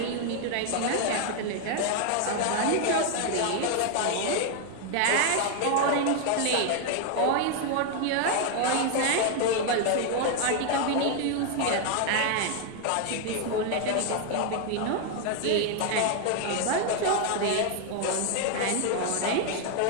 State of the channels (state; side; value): different; both; correlation 0.00